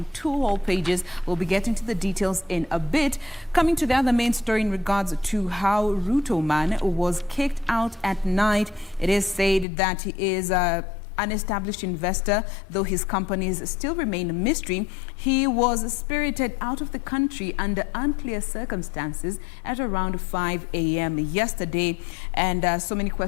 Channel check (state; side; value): drops out; right; at 9.7 s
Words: two whole pages. We'll be getting to the details in a bit. Coming to the other main story in regards to how Ruto man was kicked out at night. It is said that he is an established investor, though his companies still remain a mystery. He was spirited out of the country under unclear circumstances at around 5 a.m. yesterday, and so many